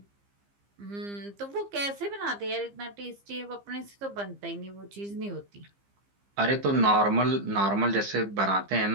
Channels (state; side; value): late; left; 15 ms